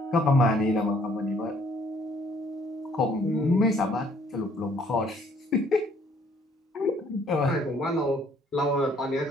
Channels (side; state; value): both; normal; correlation 0.62